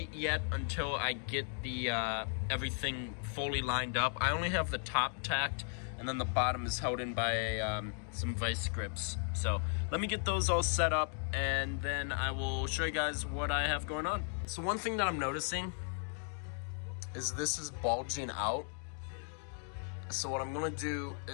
yet until I get the everything fully lined up. I only have the top tacked, and then the bottom is held in by some vice grips. So let me get those all set up, and then I will show you guys what I have going on. So one thing that I'm noticing is this is bulging out. So what I'm gonna do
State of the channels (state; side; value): silent; right; 54 dB below the other